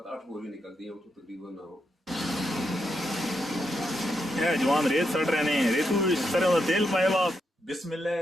ਬੋਲੀ ਨਿਕਲਦੀ ਹੈ ਉਹ ਤੋਂ ਤਕਰੀਬਨ ਨਾ ਹੋ। ਇਹ ਜਵਾਨ ਰੇਤ ਸੜ ਰਹੇ ਨੇ ਰੇਤੂ ਵਿੱਚ ਸਰੋਂ ਦਾ ਤੇਲ ਪਾਇਆ ਵਾ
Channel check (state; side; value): normal; both; correlation 0.82